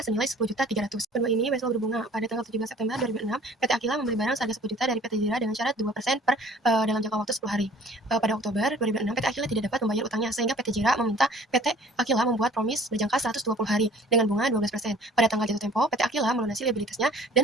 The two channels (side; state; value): both; normal; correlation 0.51